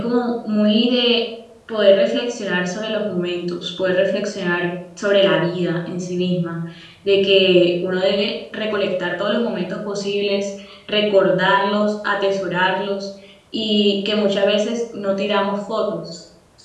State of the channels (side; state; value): both; identical; correlation 1.00